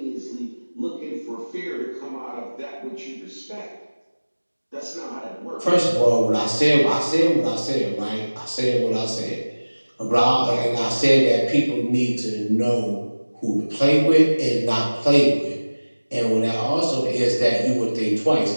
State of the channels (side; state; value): both; inverted; correlation -1.00